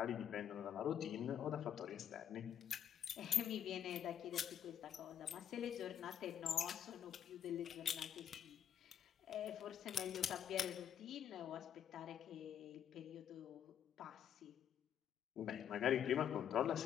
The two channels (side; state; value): right; quieter; 9.3 dB